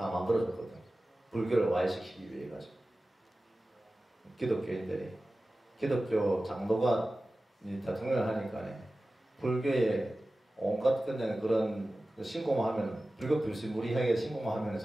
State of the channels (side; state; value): both; normal; correlation 0.96